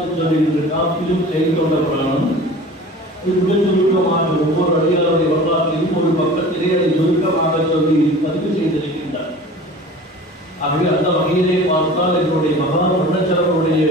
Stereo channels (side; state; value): both; normal; correlation 0.40